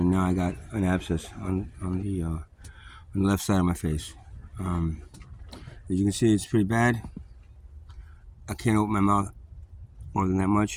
now I got an abscess on the left side of my face. As you can see, it's pretty bad. I can't open my mouth more than that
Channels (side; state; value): both; identical; correlation 1.00